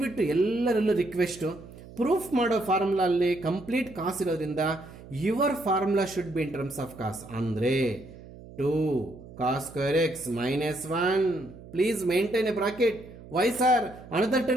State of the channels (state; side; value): noise; right; hum, 18 dB below the sound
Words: ಎಲ್ಲರಲ್ಲೂ ರಿಕ್ವೆಸ್ಟು, ಪ್ರೂಫ್ ಮಾಡೋ ಫಾರ್ಮುಲಾ ಅಲ್ಲಿ ಕಂಪ್ಲೀಟ್ ಕಾಸ್ ಇರೋದ್ರಿಂದ your formula should be in terms of cos. ಅಂದರೆ 2 cos square x minus 1. Please maintain a bracket. Why sir? Another